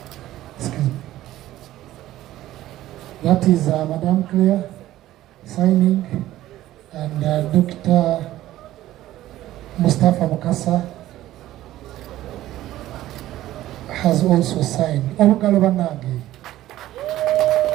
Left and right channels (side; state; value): left; quieter; 14.6 dB